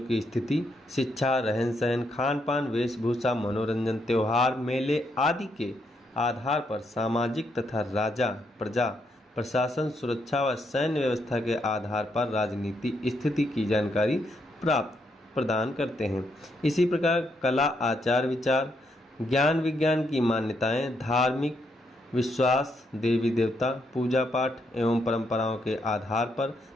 की स्थिति, शिक्षा, रहन सहन, खान पान, वेशभूषा, मनोरंजन, त्योहार, मेले आदि के आधार पर सामाजिक तथा राजा, प्रजा, प्रशासन, सुरक्षा व सैन्य व्यवस्था के आधार पर राजनीति स्थिति की जानकारी प्रदान करते हैं। इसी प्रकार कला, आचार विचार, ज्ञान विज्ञान की मान्यताएं, धार्मिक विश्वास, देवी देवता, पूजा पाठ एवं परंपराओं के आधार पर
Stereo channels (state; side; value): normal; both; correlation 0.77